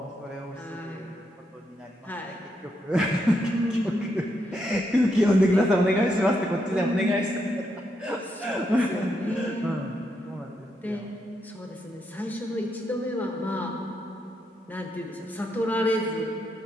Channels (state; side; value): normal; both; correlation 0.80